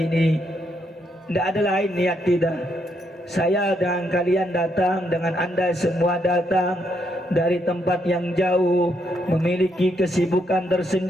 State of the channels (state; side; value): normal; both; correlation 0.76